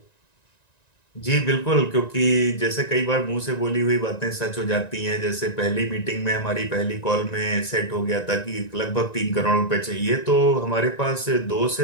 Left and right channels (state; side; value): late; right; 1.9 ms